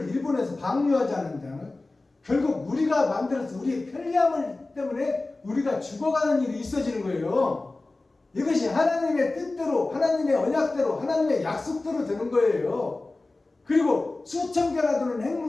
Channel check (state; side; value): quieter; right; 3.2 dB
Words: 일본에서 방류하지 않는다면 결국 우리가 만들어서 우리의 편리함을 때문에 우리가 죽어가는 일이 있어지는 거예요. 이것이 하나님의 뜻대로 하나님의 언약대로 하나님의 약속대로 되는 거예요. 그리고 수천 개나 되는